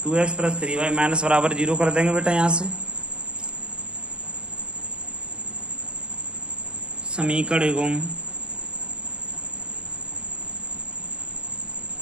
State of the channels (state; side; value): late; left; 0.054 ms